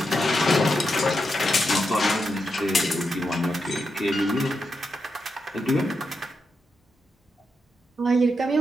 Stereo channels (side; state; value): both; normal; correlation 0.85